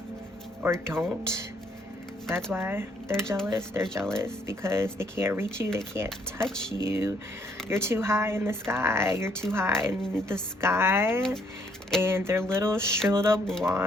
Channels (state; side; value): normal; both; correlation 0.68